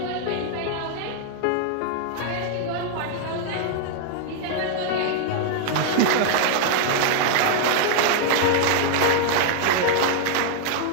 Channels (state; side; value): different; both; correlation 0.00